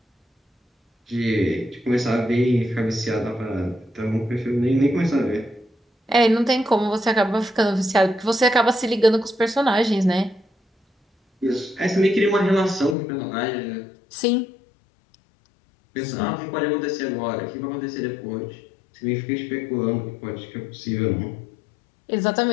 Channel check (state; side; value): drops out; right; at 13.0 s